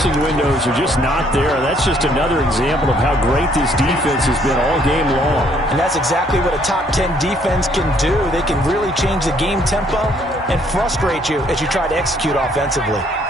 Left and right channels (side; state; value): both; normal; correlation 0.65